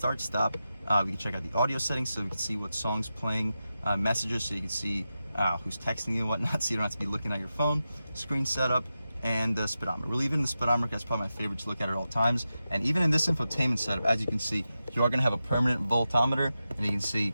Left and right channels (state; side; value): inverted; both; correlation -0.91